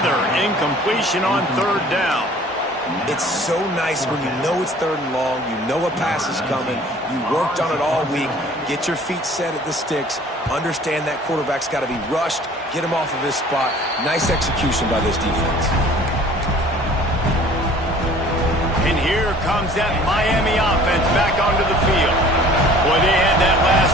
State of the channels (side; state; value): both; normal; correlation 0.50